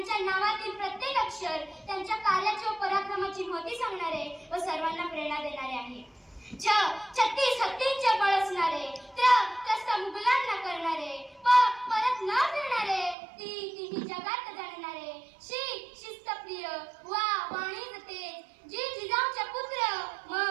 नावातील प्रत्येक अक्षर त्यांच्या कार्याची व पराक्रमाची महती सांगणारे व सर्वांना प्रेरणा देणारे आहे. छत्तीस हत्तींचे बळ असणारे, त्रस्त मुघलांना करणारे, परत न फिरणारे, तिन्ही जगात जाणणारे, श्री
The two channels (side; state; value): left; drops out; at 13.2 s